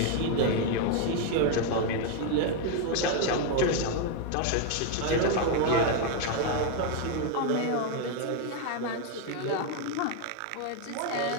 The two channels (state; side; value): different; both; correlation 0.01